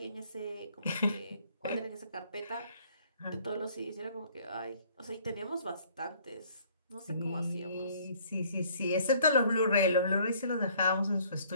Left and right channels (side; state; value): both; inverted; correlation -0.59